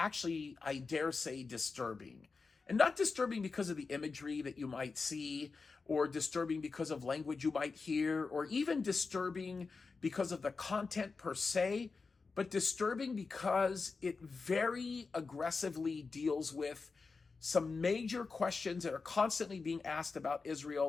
I dare say disturbing. And not disturbing because of the imagery that you might see, or disturbing because of language you might hear, or even disturbing because of the content per se, but disturbing because it very aggressively deals with some major questions that are constantly being asked about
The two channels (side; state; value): right; quieter; 4.4 dB